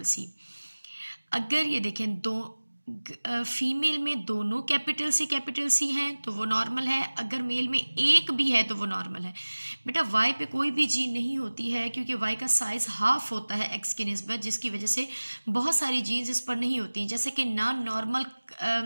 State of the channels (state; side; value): inverted; both; correlation -1.00